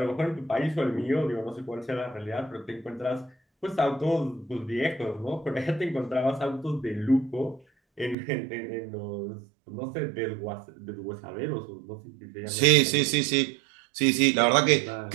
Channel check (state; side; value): drops out; left; at 8.2 s